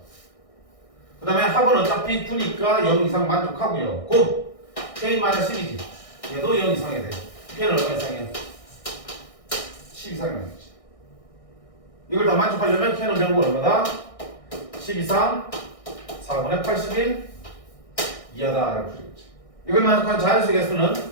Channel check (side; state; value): right; late; 1.6 ms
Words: 그 다음에 합은 어차피 9니까 0 이상 만족하고요. 곱 K-12지. 얘도 0 이상이 돼. K는 얼마 이상이야? 10 이상이 나겠지. 이걸 다 만족하려면 K는 결국 얼마다? 10 이상 4분의 81 이하다 라고 풀겠지. 이걸 만족한 자연수 개수는